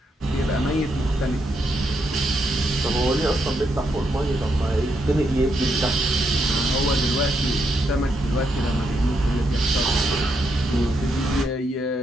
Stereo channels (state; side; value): normal; both; correlation 0.79